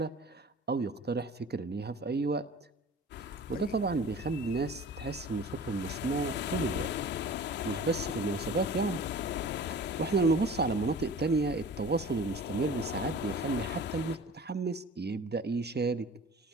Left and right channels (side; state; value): both; normal; correlation 0.42